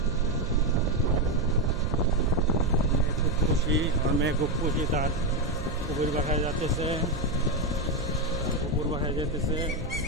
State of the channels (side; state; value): right; noise; hum, 10 dB below the sound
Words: খুব খুশি, আমার মেয়ে খুব খুশি, তার কুকুর বাসায় যাচ্ছে, কুকুর বাসায় যেতেছে